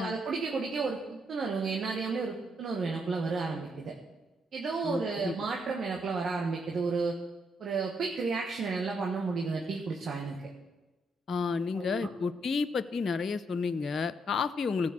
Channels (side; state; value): both; normal; correlation 0.76